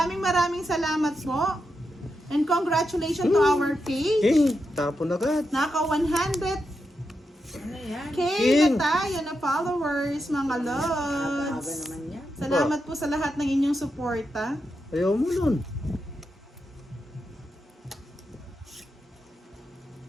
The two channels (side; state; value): both; normal; correlation 0.86